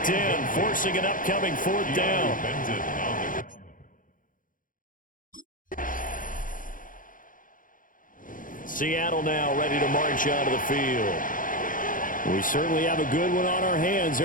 in, forcing an upcoming 4th down. Seattle now ready to march out of the field. We certainly have a good one on our hands.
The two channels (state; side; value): late; right; 0.39 ms